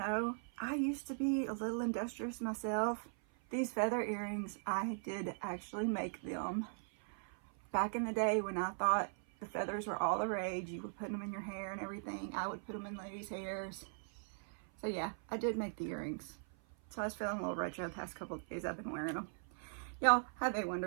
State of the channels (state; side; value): silent; left; 51 dB below the other